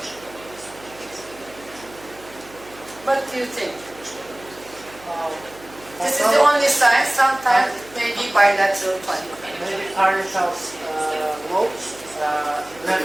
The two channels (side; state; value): right; noise; hum, 22 dB below the sound